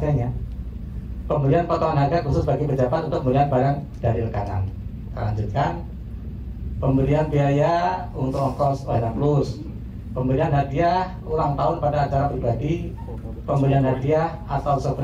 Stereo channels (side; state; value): both; identical; correlation 1.00